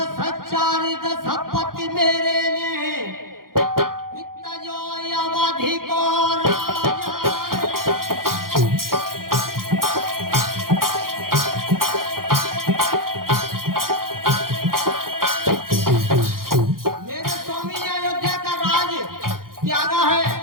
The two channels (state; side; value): late; left; 0.92 ms